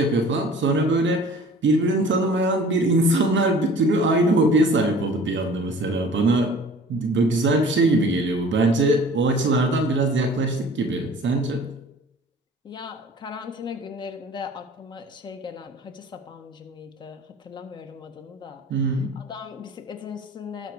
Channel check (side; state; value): both; normal; correlation 0.47